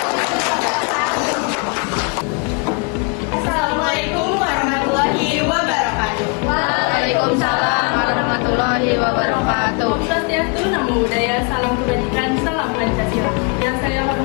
Assalamualaikum warahmatullahi wabarakatuh. Waalaikumsalam warahmatullahi wabarakatuh. Om Swastiastu, Namo Buddhaya, salam kebajikan, salam Pancasila. Yang saya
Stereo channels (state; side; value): quieter; right; 34.4 dB